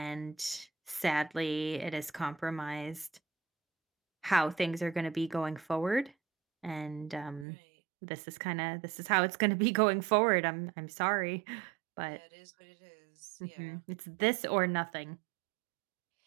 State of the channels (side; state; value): left; drops out; at 7.5 s